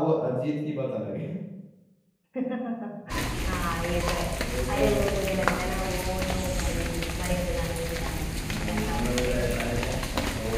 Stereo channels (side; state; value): both; identical; correlation 1.00